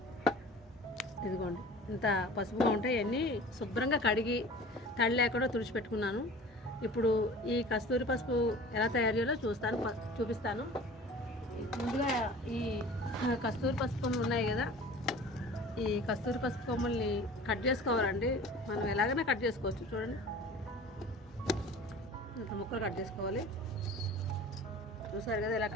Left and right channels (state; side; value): normal; both; correlation 0.42